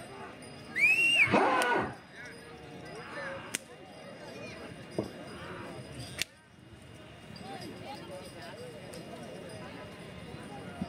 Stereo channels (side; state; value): both; identical; correlation 1.00